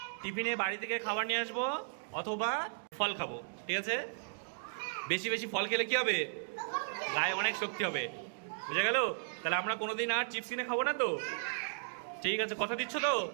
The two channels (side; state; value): left; silent; digital silence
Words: টিফিনে বাড়ি থেকে খাবার নিয়ে আসবো অথবা ফল খাবো। ঠিক আছে? বেশি বেশি ফল খেলে কি হবে? গায়ে অনেক শক্তি হবে। বুঝা গেল? তাহলে আমরা কোনোদিন আর চিপস কিনে খাবো না তো? ঠিক আছে, কথা দিচ্ছ তো?